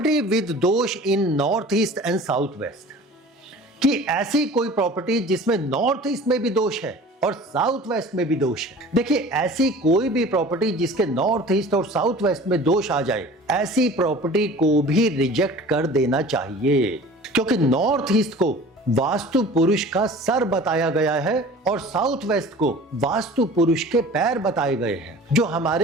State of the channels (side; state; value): both; normal; correlation 0.43